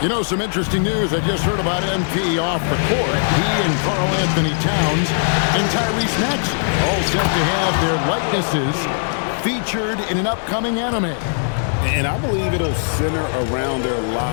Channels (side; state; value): right; silent; digital silence